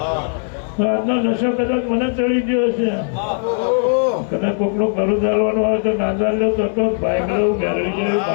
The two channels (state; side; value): silent; right; digital silence